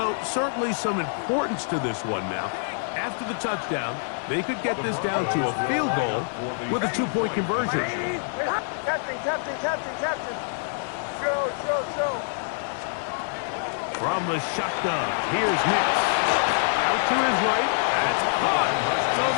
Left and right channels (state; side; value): silent; right; digital silence